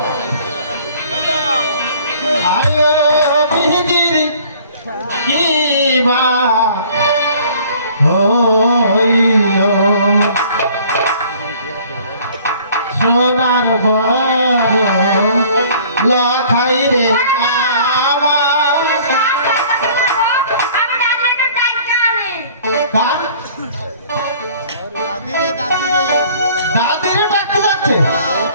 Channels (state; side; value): inverted; both; correlation -0.53